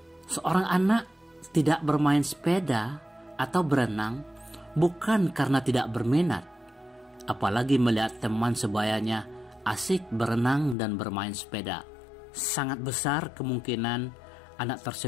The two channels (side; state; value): right; drops out; at 10.8 s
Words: Seorang anak tidak bermain sepeda atau berenang bukan karena tidak berminat, apalagi melihat teman sebayanya asik berenang dan bermain sepeda. Sangat besar kemungkinan anak